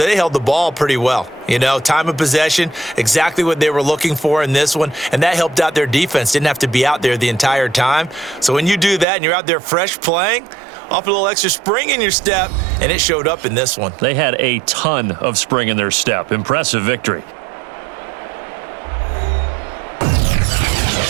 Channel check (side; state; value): left; drops out; at 9.1 s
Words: held the ball pretty well. You know, time of possession, exactly what they were looking for in this one, and that helped out their defense. Didn't have to be out there the entire time. So when you do that and you're out there fresh playing, off a little extra spring in your step, and it showed up in this one. They had a ton of spring in their step. Impressive victory.